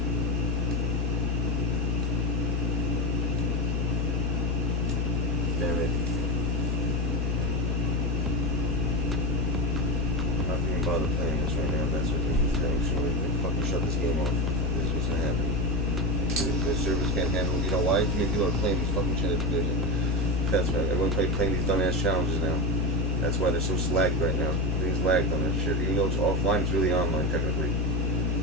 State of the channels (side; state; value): both; normal; correlation 0.17